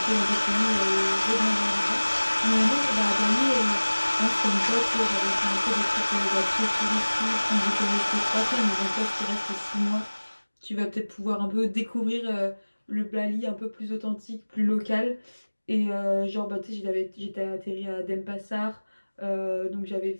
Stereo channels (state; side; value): inverted; both; correlation -1.00